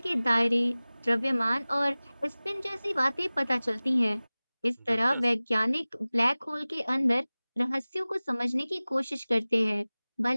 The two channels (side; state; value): both; inverted; correlation -0.99